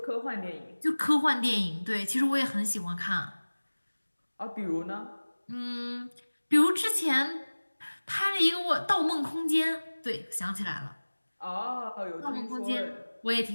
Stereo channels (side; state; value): both; inverted; correlation -1.00